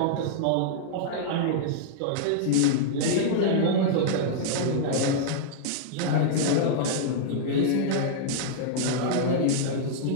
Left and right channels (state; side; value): different; both; correlation -0.02